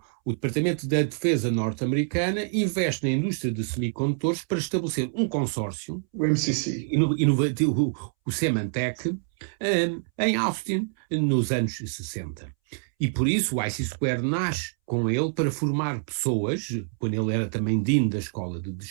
Departamento da Defesa norte-americana investe na indústria de semicondutores para estabelecer um consórcio, o MCC, inovativo, o Symantec, em Austin, nos anos 60. E por isso o IC Square nasce com ele para formar pessoas, quando ele era também dean da Escola de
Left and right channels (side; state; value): left; silent; 61 dB below the other